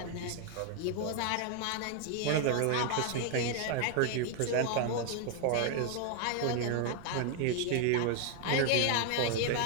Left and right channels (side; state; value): both; different; correlation 0.00